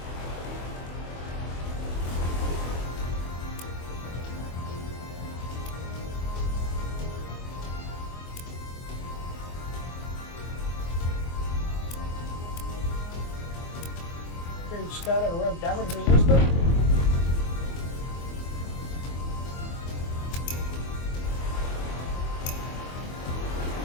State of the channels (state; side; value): late; right; 24 ms